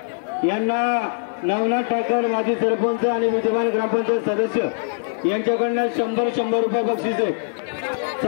यांना नवनाथ ठाकर माजी सरपंच आणि विद्यमान ग्रामपंचायत सदस्य यांच्याकडनं 100 रुपये बक्षीस आहे।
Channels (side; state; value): right; silent; 57 dB below the other